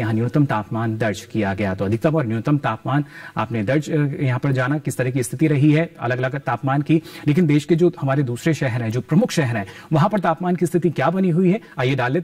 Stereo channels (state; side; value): identical; both; correlation 1.00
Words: न्यूनतम तापमान दर्ज किया गया। तो अधिकतम और न्यूनतम तापमान आपने दर्ज यहां पर जाना किस तरह की स्थिति रही है अलग अलग तापमान की। लेकिन देश के जो हमारे दूसरे शहर हैं, जो प्रमुख शहर हैं, वहां पर तापमान की स्थिति क्या बनी हुई है, आइए डाल